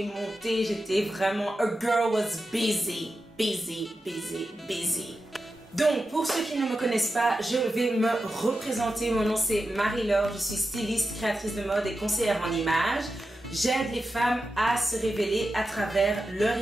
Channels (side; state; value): both; normal; correlation 0.90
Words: monter, j'étais vraiment... A girl was busy. Donc, pour ceux qui ne me connaissent pas, je vais me représenter. Mon nom c'est Marie-Laure, je suis styliste, créatrice de mode et conseillère en images. J'aide les femmes à se révéler à travers leur